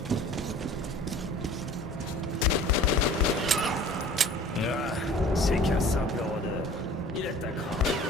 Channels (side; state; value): both; normal; correlation 0.46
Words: Ah, c'est qu'un simple rôdeur. Il attaquera.